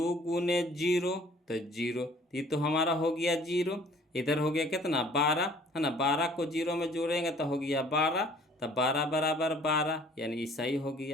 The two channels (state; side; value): normal; both; correlation 0.54